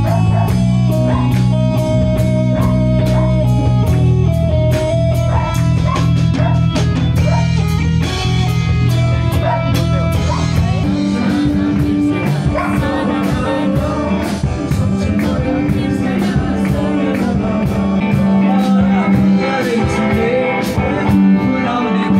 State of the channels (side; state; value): both; identical; correlation 1.00